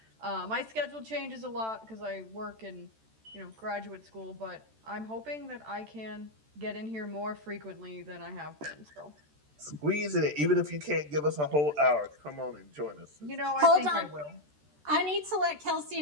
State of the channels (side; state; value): left; late; 13 ms